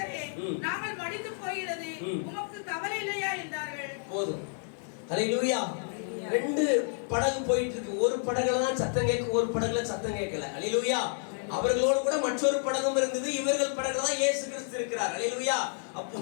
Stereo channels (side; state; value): right; silent; 58 dB below the other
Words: நாங்கள் மடிந்து போகிறது, உமக்கு கவலை இல்லையா என்றார்கள். போதும். ஹல்லேலூயா. 2 படகு போயிட்டு இருக்கு. ஒரு படகுல தான் சத்தம் கேட்கும், ஒரு படகுல சத்தம் கேட்கல. ஹல்லேலூயா. அவர்களோடு கூட மற்றொரு படகும் இருந்தது. இவர்கள் படகுல தான் இயேசு கிறிஸ்து இருக்கிறார். ஹல்லேலூயா.